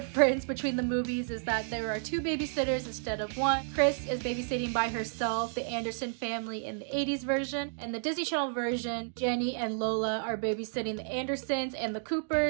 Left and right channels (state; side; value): silent; left; digital silence